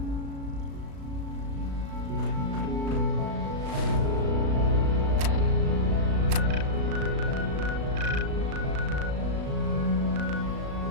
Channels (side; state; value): left; late; 36 ms